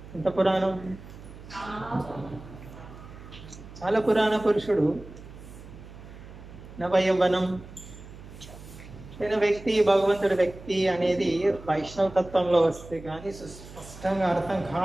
ఎంత పురాణం? చాలా పురాణ పురుషుడు. నవయవనం అయిన వ్యక్తి, భగవంతుడి వ్యక్తి అనేది వైష్ణవ తత్వంలో వస్తే కానీ స్పష్టంగా అర్థం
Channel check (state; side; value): noise; right; hum, 16 dB below the sound